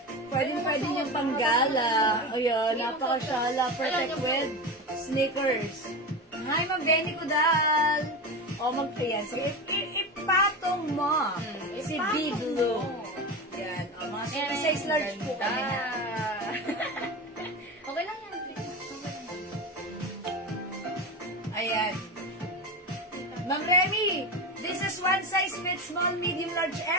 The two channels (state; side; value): normal; both; correlation 0.23